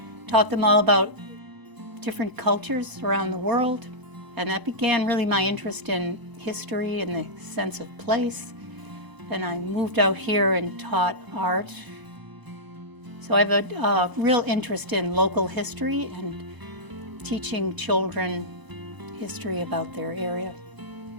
taught them all about different cultures around the world, and that began really my interest in history and the sense of place. Then I moved out here and taught art. So I have a real interest in local history and teaching children history about their area.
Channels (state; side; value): late; left; 1.0 ms